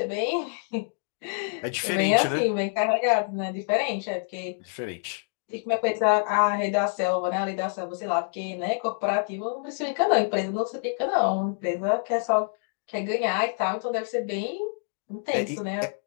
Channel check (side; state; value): right; silent; 60 dB below the other